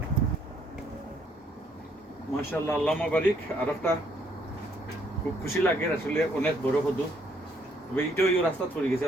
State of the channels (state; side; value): normal; both; correlation 0.68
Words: মাশাআল্লাহ আল্লাহুম্মা বারিক। আর একটা খুব খুশি লাগে আসলে, অনেক বড় কদু। তবে এইটাও এই রাস্তা পড়ে গেছে,